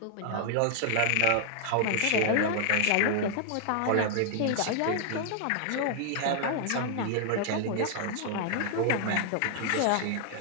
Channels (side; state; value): both; different; correlation -0.01